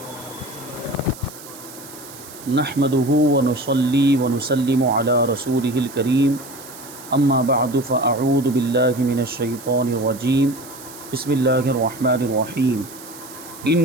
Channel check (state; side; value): noise; right; hiss, 17 dB below the sound